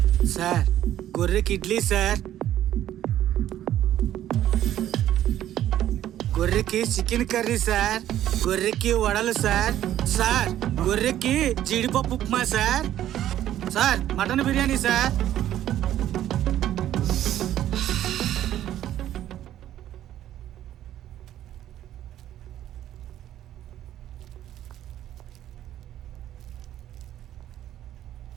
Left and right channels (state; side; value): quieter; left; 12.2 dB